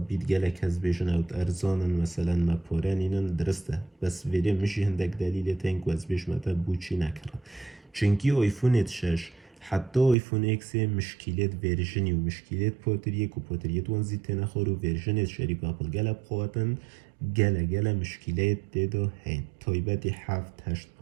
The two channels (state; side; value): drops out; left; at 10.2 s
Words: گلک از بیشن اوت ارزانن مثلا ما پورانینن درسته بس ویده مشی هندک دلیل تنگ و از بیش متا بوچی نکرن چونکی آیفون 6 حتی آیفون اکس مشکلات ورژنی و مشکلات پاتریک و پاتریت وانزی تنخور و ورژنت شریک اپل گلب خواتن گله مشکلات دیدا هین تایبتی 7